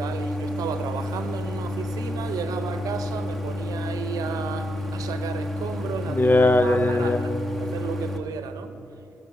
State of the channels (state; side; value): normal; both; correlation 0.82